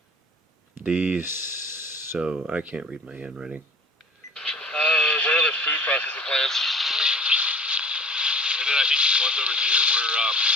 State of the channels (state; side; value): normal; both; correlation 0.46